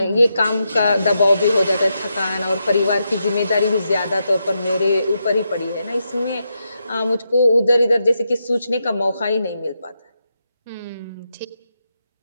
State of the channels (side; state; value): both; inverted; correlation -0.84